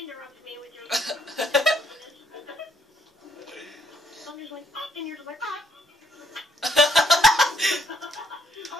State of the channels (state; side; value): normal; both; correlation 0.70